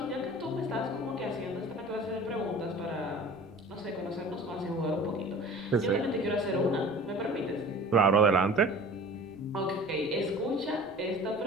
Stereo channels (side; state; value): right; noise; rumble, 25 dB below the sound